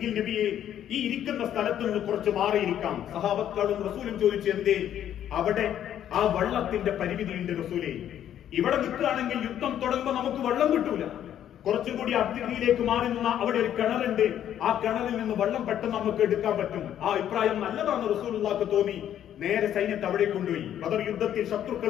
നബിയെ, ഈ ഇരിക്കുന്ന സ്ഥലത്ത് നിന്ന് കുറച്ച് മാറിയിരിക്കാം. സഹാബത്തും റസൂലും ചോദിച്ചു, എന്തേ? അവിടെ ആ വെള്ളത്തിന്റെ പരിമിതിയുണ്ട് റസൂലേ. ഇവിടെ നിൽക്കുകയാണെങ്കിൽ യുദ്ധം തുടങ്ങുമ്പോൾ നമുക്ക് വെള്ളം കിട്ടൂല. കുറച്ചുകൂടി അതിഥിയിലേക്ക് മാറി നിന്ന അവിടെ ഒരു കിണറുണ്ട്, ആ കിണറിൽ നിന്ന് വെള്ളം പെട്ടെന്ന് നമുക്ക് എടുക്കാൻ പറ്റും. ആ അഭിപ്രായം നല്ലതാണെന്ന് റസൂലുള്ളാഹിക്ക് തോന്നി. നേരെ സൈന്യത്തെ അവിടെ കൊണ്ടുപോയി. ബദർ യുദ്ധത്തിൽ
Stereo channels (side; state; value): right; quieter; 10.6 dB